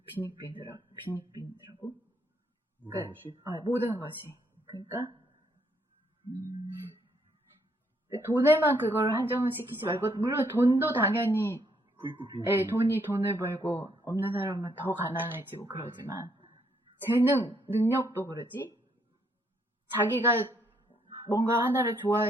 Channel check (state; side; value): normal; both; correlation 0.71